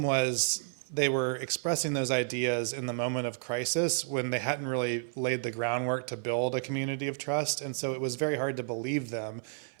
was they were expressing those ideas in the moment of crisis when they hadn't really laid the groundwork to build a community of trust, and so it was very hard to believe them.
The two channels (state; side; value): silent; left; 57 dB below the other